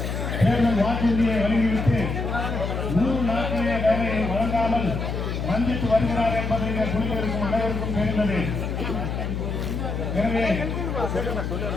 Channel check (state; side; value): noise; left; hum, 3 dB below the sound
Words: தேர்தல் வாக்குறுதியை வழங்கிவிட்டு 100 நாட்களே வேலையை வழங்காமல் வஞ்சித்து வருகிறார் என்பதை குழுவிற்கும் அனைவருக்கும் தெரிந்தது. எனவே